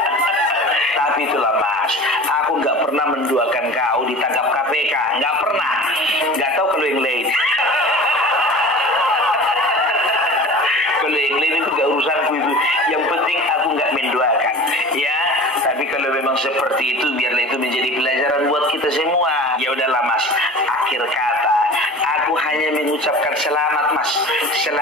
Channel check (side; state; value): both; normal; correlation 0.38